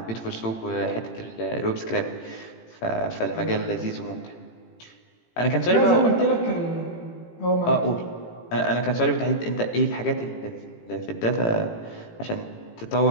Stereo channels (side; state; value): right; late; 18 ms